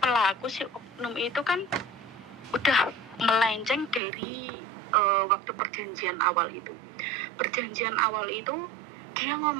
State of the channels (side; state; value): left; drops out; at 4.0 s